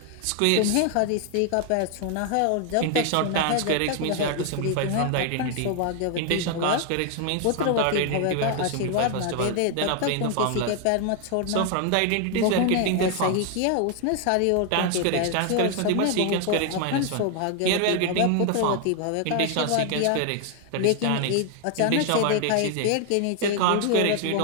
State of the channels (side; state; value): both; different; correlation 0.00